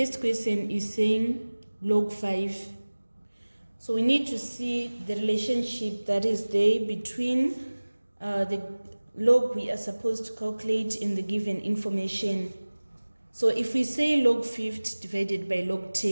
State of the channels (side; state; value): both; inverted; correlation -1.00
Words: question is saying log 5. So we need to see the relationship that is there between the log we are supposed to calculate in the given information. So if we say log 50 divided by log